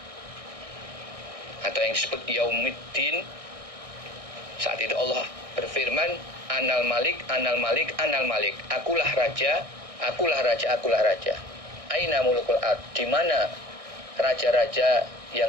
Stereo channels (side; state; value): left; late; 1.6 ms